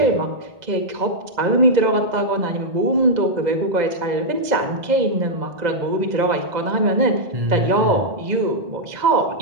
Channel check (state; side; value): late; left; 2.0 ms